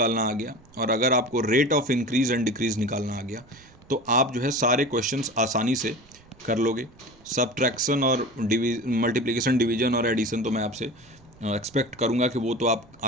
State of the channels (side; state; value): right; noise; rumble, 26 dB below the sound